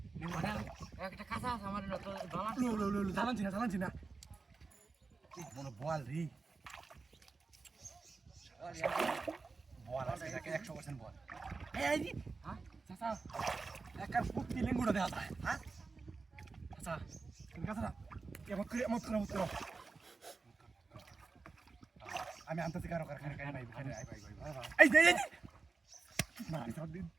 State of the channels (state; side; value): quieter; left; 4.2 dB